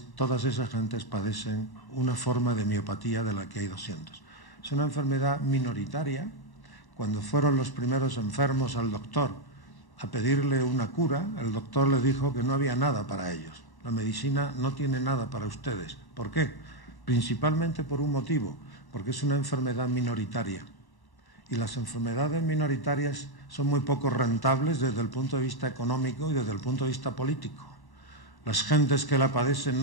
todas esas gentes padecen una forma de miopatía de la que hay 200. Es una enfermedad minoritaria. Cuando fueron los primeros enfermos al doctor a pedirle una cura, el doctor le dijo que no había nada para ellos. La medicina no tiene nada para ustedes. ¿Por qué? Principalmente por un motivo, porque es una enfermedad minoritaria. Y las enfermedades minoritarias son muy poco rentables desde el punto de vista económico y desde el punto de vista político. Las gentes que la padecen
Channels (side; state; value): right; late; 1.1 ms